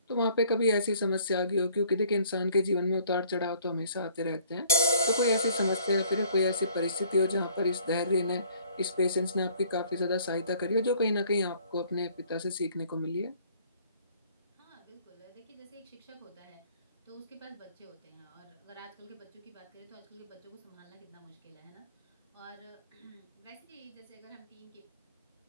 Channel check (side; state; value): both; inverted; correlation -0.58